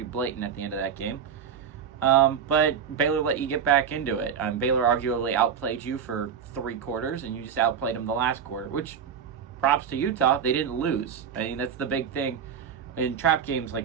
blatant at the end of that game, but Baylor let you get back into it. Baylor arguably outplayed you for 3 quarters, and you just outplayed them the last quarter, which, props to Utah, they didn't lose. I mean, that's the big thing in trap games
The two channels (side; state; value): left; quieter; 7.6 dB